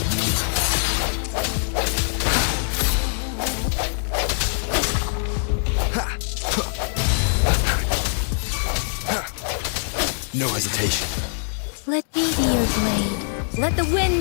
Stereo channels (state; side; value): silent; right; digital silence